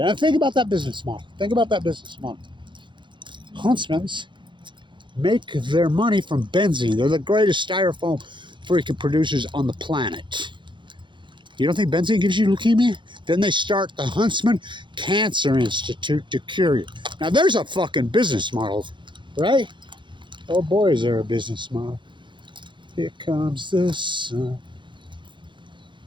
And think about that business model. Think about that business model. Huntsmans make their money from benzene. They're the greatest styrofoam freaking producers on the planet. You don't think benzene gives you leukemia? Then they start the Huntsman Cancer Institute to cure you. Now there's a fucking business model, right? Oh boy, is there a business model. Here comes the sun.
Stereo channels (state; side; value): late; left; 0.23 ms